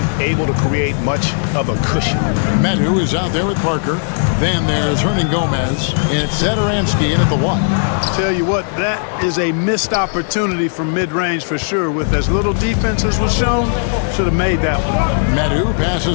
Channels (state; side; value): silent; right; digital silence